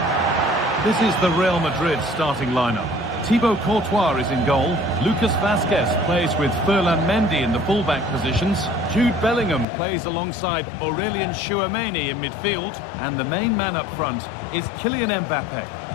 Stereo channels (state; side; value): drops out; right; at 9.7 s